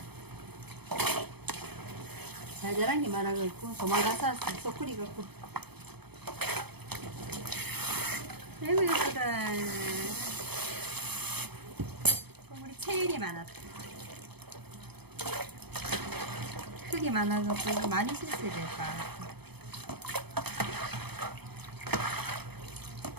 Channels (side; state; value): left; late; 0.98 ms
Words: 잘 자란 게 많아갖고 도망가서 쏙 끓이갖고. 아이고 예쁘다. 우리 체일이 많았다. 크기 많아갖고 많이 실수해야 될까.